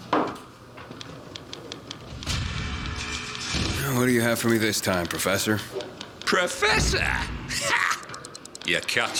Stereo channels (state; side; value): identical; both; correlation 1.00